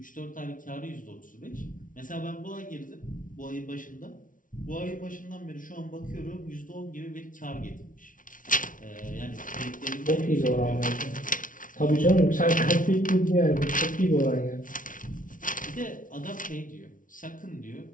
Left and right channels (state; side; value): late; right; 0.38 ms